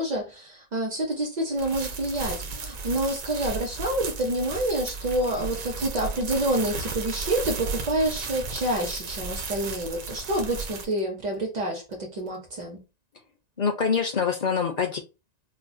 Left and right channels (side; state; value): left; late; 1.9 ms